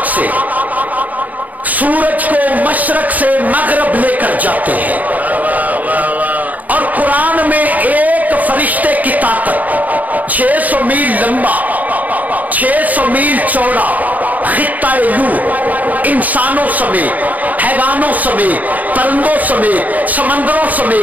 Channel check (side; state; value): left; late; 0.076 ms